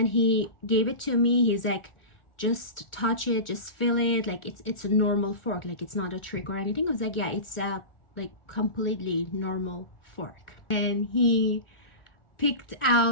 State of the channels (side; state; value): right; late; 1.4 ms